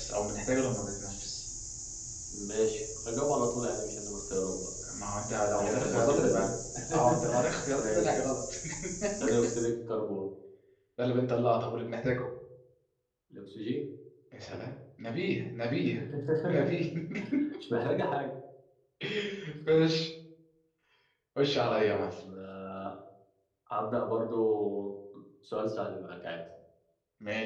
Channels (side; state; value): both; identical; correlation 1.00